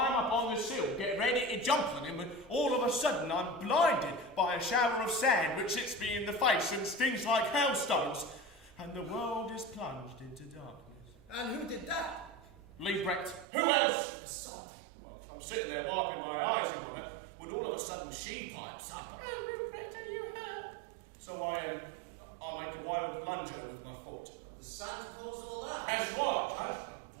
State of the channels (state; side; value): drops out; left; at 13.5 s